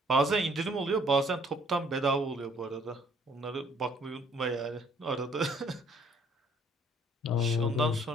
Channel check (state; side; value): normal; both; correlation 0.61